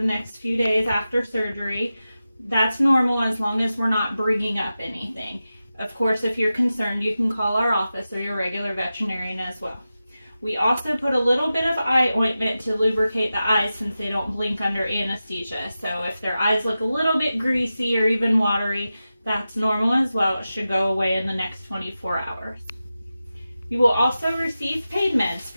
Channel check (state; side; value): inverted; both; correlation -0.93